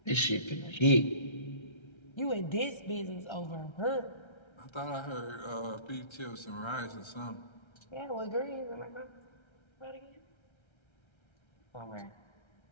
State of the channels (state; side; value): late; right; 1.3 ms